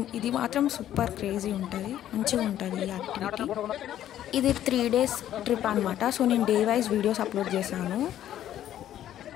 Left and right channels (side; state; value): right; quieter; 11.8 dB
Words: ఇది మాత్రం సూపర్ క్రేజీ ఉంటుంది, మంచిగా ఉంటుంది ఈ యాక్టివిటీ. ఇది 3 days ట్రిప్ అనమాట. సో నేను డే వైజ్ వీడియోస్ అప్లోడ్ చేశాను.